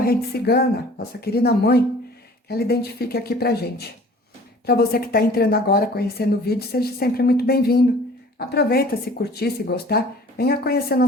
cigana, nossa querida mãe, que ela identifique aqui pra gente. Para você que está entrando agora, conhecendo o vídeo, seja sempre muito bem-vindo. Aproveita, se curtir, se gostar, venha conhecer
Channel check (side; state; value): both; normal; correlation 0.49